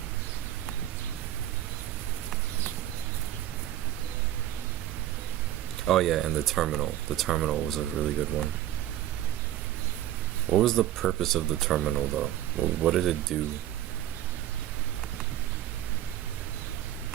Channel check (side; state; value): left; quieter; 13.2 dB